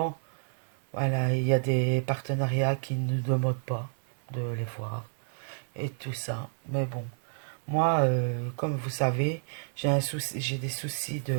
voilà, il y a des partenariats qui ne nous demandent pas de les voir et tout ça. Mais bon, moi, comme vous savez, j'ai des soucis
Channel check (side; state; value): left; silent; 58 dB below the other